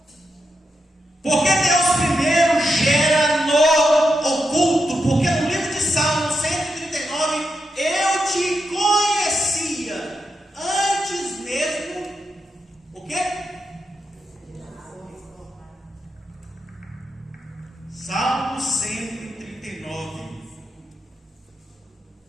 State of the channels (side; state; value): both; normal; correlation 0.85